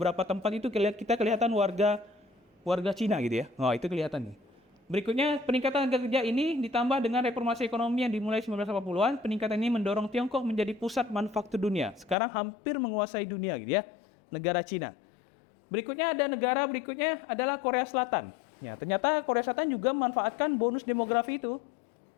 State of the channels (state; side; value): drops out; right; at 12.2 s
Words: tempat itu kita kelihatan warga Cina gitu ya. Oh, itu kelihatan nih. Berikutnya, peningkatan harga kerja ini ditambah dengan reformasi ekonomi yang dimulai 1980-an, peningkatan ini mendorong Tiongkok menjadi pusat manufaktur dunia. Sekarang hampir menguasai dunia gitu ya, negara Cina. Berikutnya adalah Korea Selatan. Ya, ternyata Korea Selatan juga memanfaatkan bonus demografi itu.